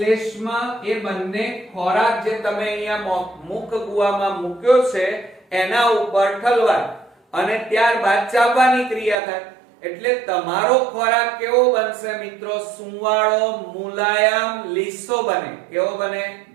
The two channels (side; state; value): left; drops out; at 9.2 s